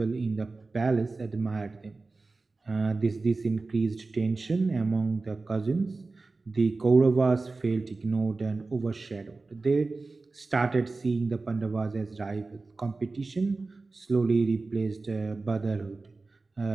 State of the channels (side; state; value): left; quieter; 3.7 dB